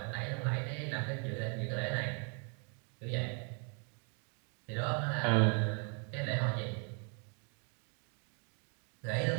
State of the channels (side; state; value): left; quieter; 39.0 dB